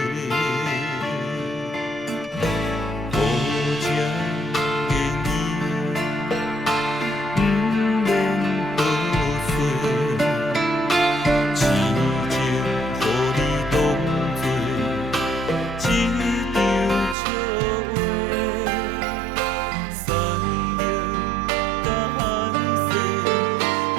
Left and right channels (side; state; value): left; drops out; at 17.2 s